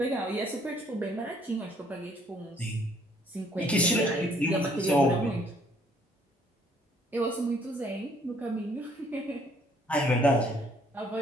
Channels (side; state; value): both; normal; correlation 0.63